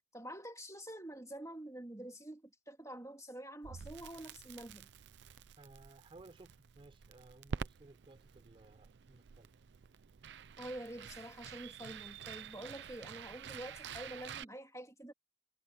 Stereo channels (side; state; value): left; quieter; 3.0 dB